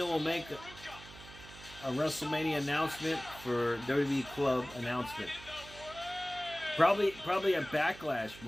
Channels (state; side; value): noise; right; hum, 17 dB below the sound